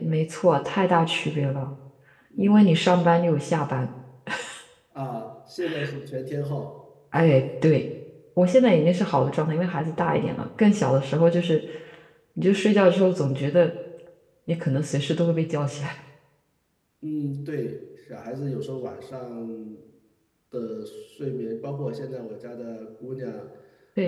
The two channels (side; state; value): both; identical; correlation 1.00